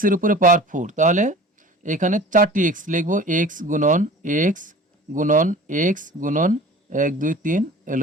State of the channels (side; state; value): both; normal; correlation 0.41